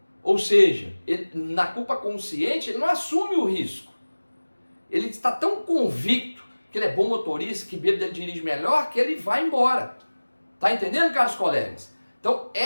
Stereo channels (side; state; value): both; inverted; correlation -1.00